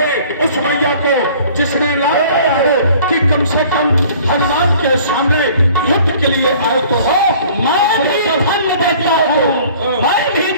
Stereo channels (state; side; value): inverted; both; correlation -0.51